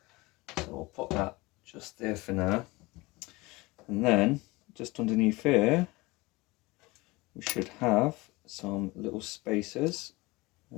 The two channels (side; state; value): right; quieter; 22.7 dB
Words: So we'll put that just there for now. And then just underneath here we should have some little spacers.